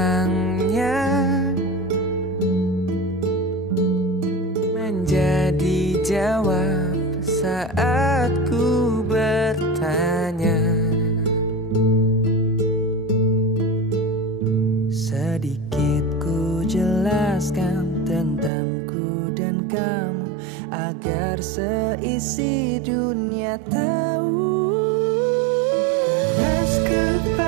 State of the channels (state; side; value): drops out; left; at 18.5 s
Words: menjadi jawab saat ku bertanya. Sedikit ku jelaskan tentangku dan kamu, agar seisi dunia tahu. Keras